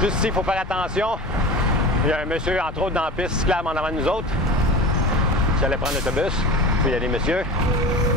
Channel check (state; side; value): normal; both; correlation 0.34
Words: Juste ici, il faut faire attention. Il y a un monsieur, entre autres, dans la piste cyclable en avant de nous autres. Qui allait prendre l'autobus. Puis il y a des messieurs.